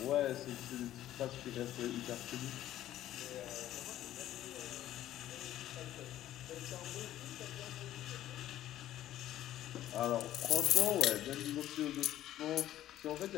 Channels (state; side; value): quieter; right; 13.1 dB